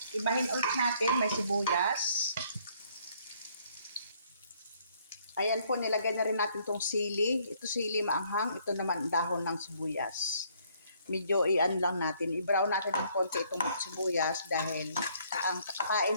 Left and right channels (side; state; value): both; inverted; correlation -0.65